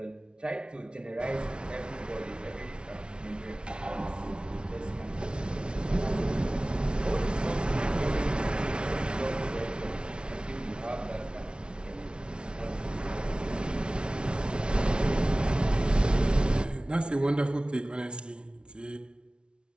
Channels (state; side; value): late; left; 0.056 ms